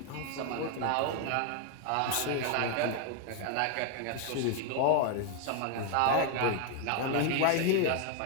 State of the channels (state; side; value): different; both; correlation 0.01